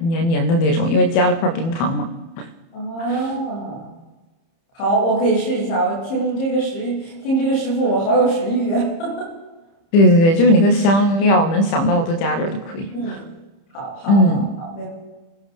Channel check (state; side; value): late; right; 30 ms